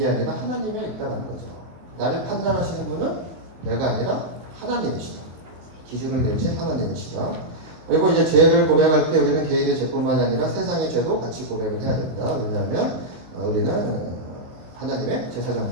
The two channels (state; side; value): late; left; 23 ms